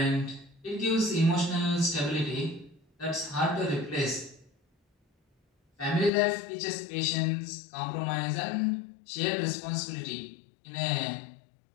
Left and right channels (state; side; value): drops out; right; at 6.1 s